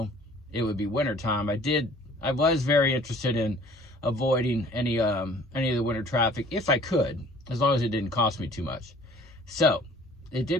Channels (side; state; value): both; normal; correlation 0.51